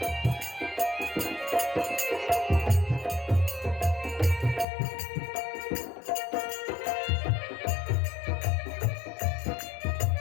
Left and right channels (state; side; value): drops out; right; at 4.7 s